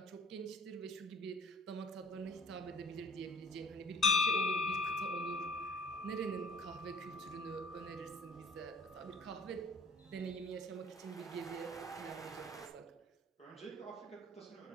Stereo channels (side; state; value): both; normal; correlation 0.49